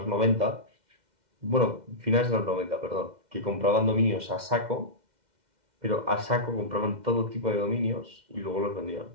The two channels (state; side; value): late; left; 2.1 ms